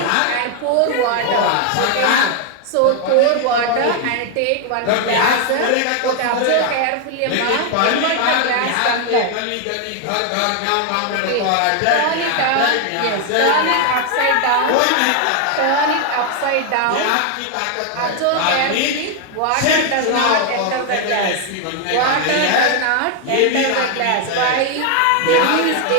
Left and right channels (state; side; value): different; both; correlation 0.01